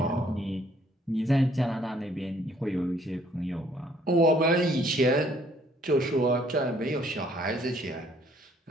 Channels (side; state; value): both; normal; correlation 0.63